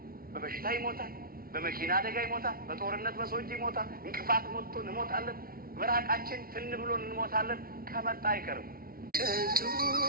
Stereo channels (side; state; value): left; late; 0.43 ms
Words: በበሽታ ይሞታል፣ በመኪና አደጋ ይሞታል፣ በጦርነት በሰዎች ይሞታል፣ እንቅፋት ሞቶ እንሞታለን፣ በራቃችን ትን ብሎን እንሞታለን። ከመጣ አይቀርም። ከንቱ